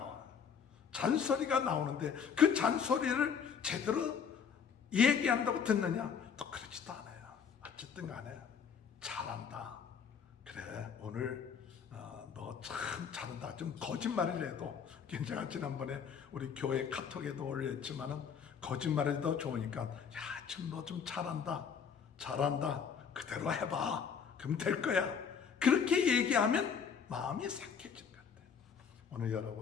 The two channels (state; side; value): quieter; right; 6.9 dB